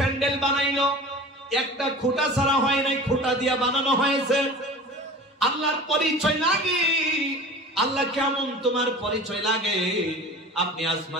বানাইলো একটা খুঁটা ছাড়া হয় নাই, খুঁটা দিয়া বানানো হয়েছে। আল্লাহর পরিচয় লাগে, আল্লাহ কেমন তোমার পরিচয় লাগে। আপনি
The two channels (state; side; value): normal; both; correlation 0.38